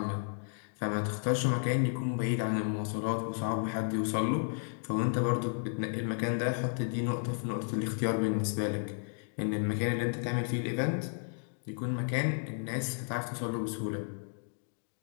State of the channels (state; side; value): silent; right; digital silence